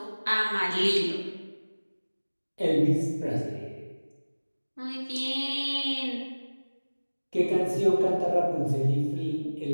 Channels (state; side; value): inverted; both; correlation -1.00